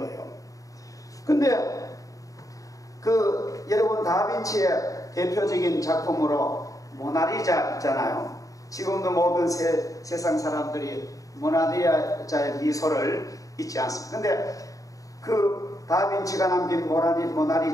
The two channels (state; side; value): late; right; 0.16 ms